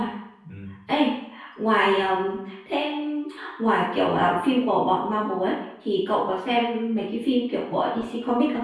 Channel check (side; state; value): both; identical; correlation 1.00